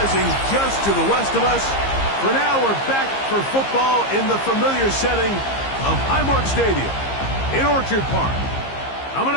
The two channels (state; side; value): late; right; 15 ms